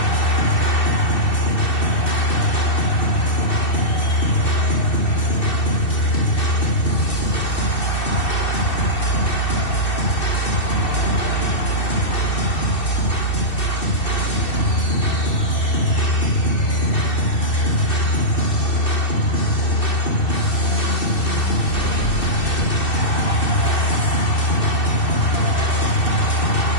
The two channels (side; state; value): right; late; 2.7 ms